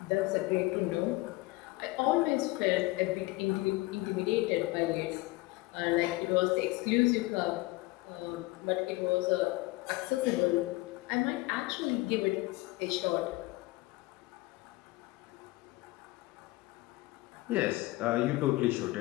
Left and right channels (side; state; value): right; quieter; 20.9 dB